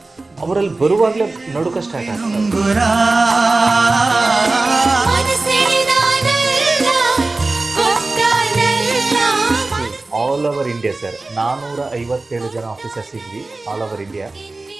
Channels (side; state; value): left; quieter; 3.3 dB